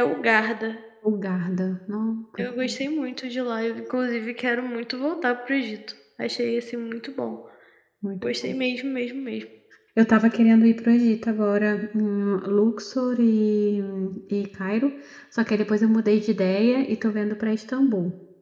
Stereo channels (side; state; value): both; identical; correlation 1.00